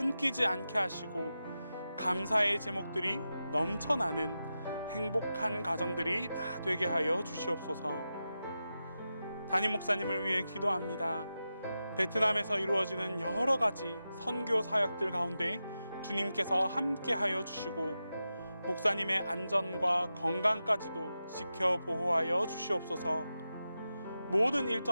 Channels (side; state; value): both; inverted; correlation -0.91